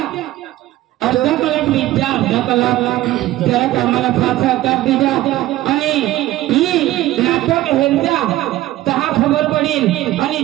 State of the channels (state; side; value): quieter; left; 15.5 dB